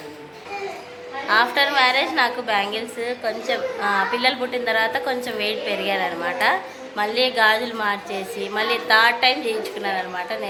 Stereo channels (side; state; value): both; identical; correlation 1.00